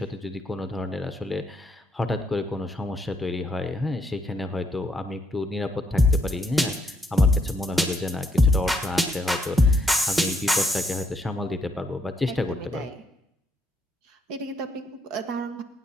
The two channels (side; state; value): both; normal; correlation 0.74